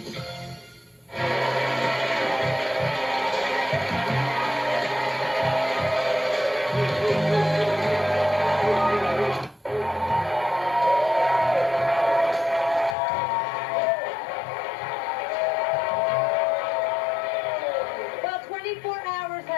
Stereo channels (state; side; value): drops out; right; at 13.0 s